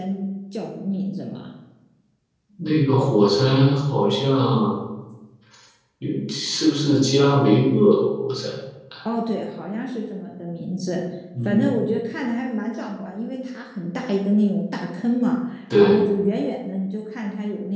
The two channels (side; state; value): both; identical; correlation 1.00